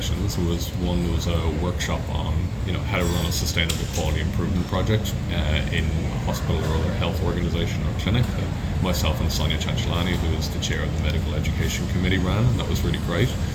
One was a workshop on how to run a sustainable quality improvement project in a hospital or other health organization or clinic. Myself and Sonia Chanchalani, who is the chair of the Medical Education Committee, ran, and that was really great.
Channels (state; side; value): identical; both; correlation 1.00